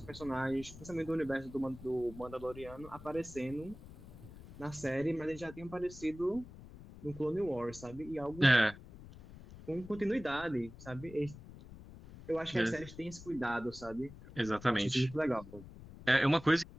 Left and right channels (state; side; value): noise; left; rumble, 16 dB below the sound